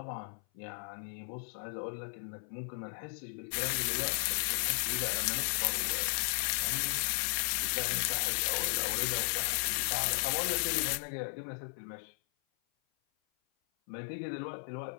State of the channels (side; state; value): right; silent; 54 dB below the other